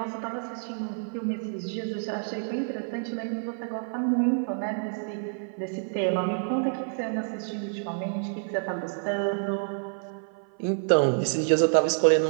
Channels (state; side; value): silent; left; 56 dB below the other